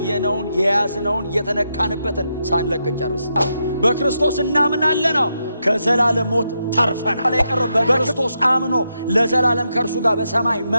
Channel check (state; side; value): inverted; both; correlation -0.83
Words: የያዝነውን የተነካንበትን ሳንለቅን ጨርስ። በክርስቶስ እናምናለን፣ ከዘላለም ሞት ተርፈናል። የቀረው በክርስቶስ አምኖ ለዘላለም ከእርሱ ጋር በሰማይ